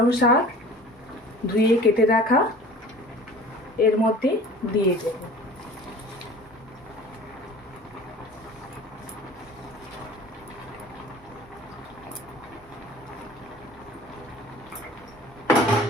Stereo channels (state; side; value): normal; both; correlation 0.44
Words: শাক ধুয়ে কেটে রাখা এর মধ্যে দিয়ে দেব।